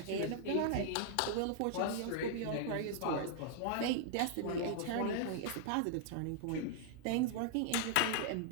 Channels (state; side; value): different; both; correlation -0.01